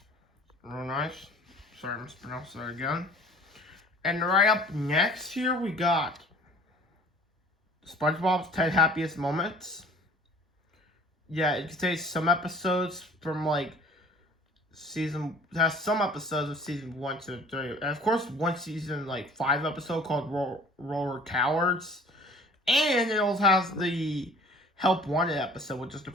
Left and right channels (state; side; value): normal; both; correlation 0.49